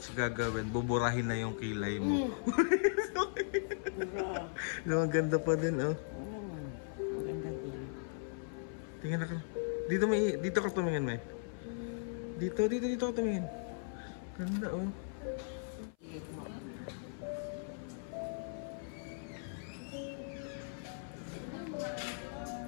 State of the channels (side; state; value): right; silent; 53 dB below the other